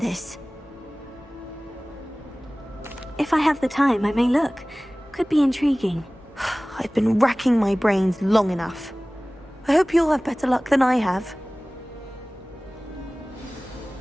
If I have the time, I may look. Could be intriguing. I've been racking my brains long enough. I hope you'll have better luck than I have.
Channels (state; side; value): normal; both; correlation 0.98